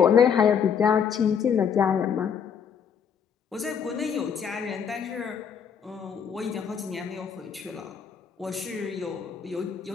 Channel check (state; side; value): quieter; right; 7.2 dB